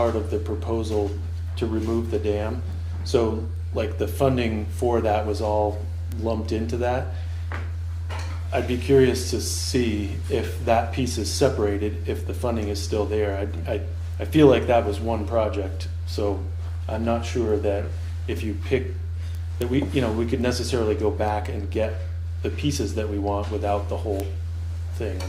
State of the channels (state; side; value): identical; both; correlation 1.00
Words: of the proposal to remove the dam. So like the funding for that was all lumped into that. I'd be curious to see if that piece is separated, if the funding is still there. I feel like that was one project, so I'm not sure that if you pick, that we could necessarily go back and get the pieces that we want without the whole thing.